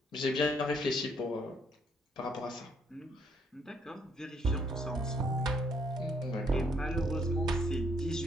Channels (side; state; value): both; normal; correlation 0.68